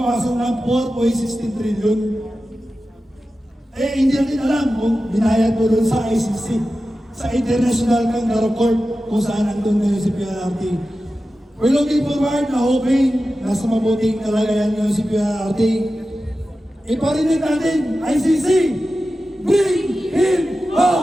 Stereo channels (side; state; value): both; normal; correlation 0.93